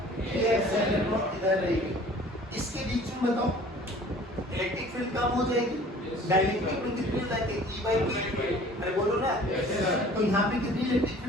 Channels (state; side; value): normal; both; correlation 0.49